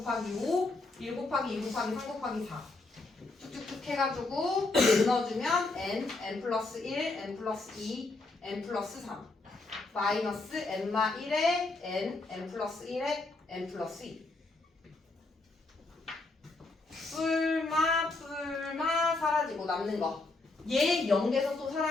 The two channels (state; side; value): quieter; right; 3.3 dB